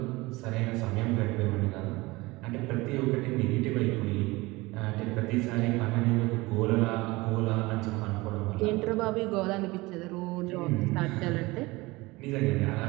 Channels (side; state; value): left; quieter; 21.9 dB